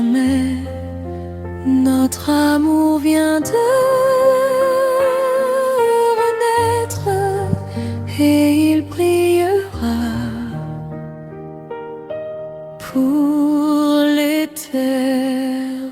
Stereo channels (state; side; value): identical; both; correlation 1.00